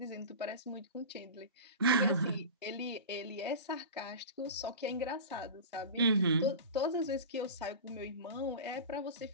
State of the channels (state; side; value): inverted; both; correlation -0.30